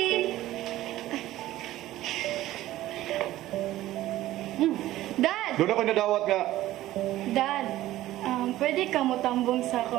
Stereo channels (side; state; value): left; quieter; 15.2 dB